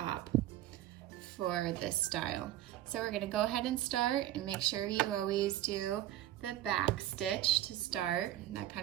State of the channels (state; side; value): quieter; left; 13.7 dB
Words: for this style. So we're going to go ahead and start, and make sure you always do the back stitch to start. That